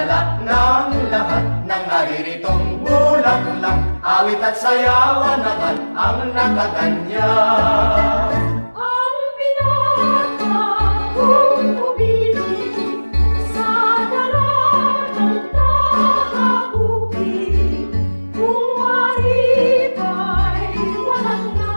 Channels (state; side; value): inverted; both; correlation -1.00